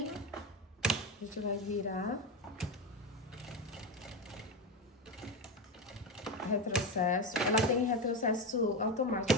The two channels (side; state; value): both; normal; correlation 0.15